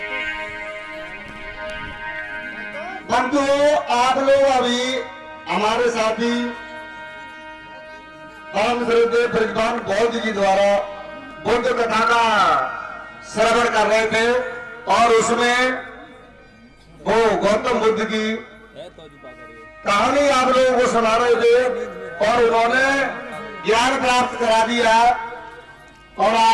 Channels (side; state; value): both; identical; correlation 1.00